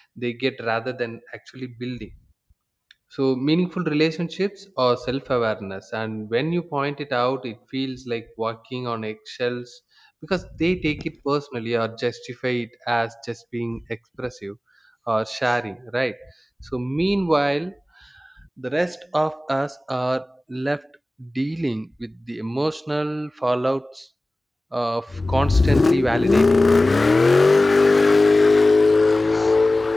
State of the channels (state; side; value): normal; both; correlation 0.97